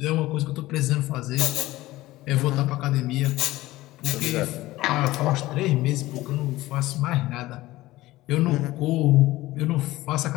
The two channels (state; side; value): quieter; right; 17.6 dB